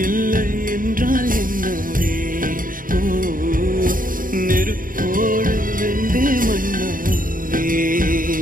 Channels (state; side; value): late; left; 0.40 ms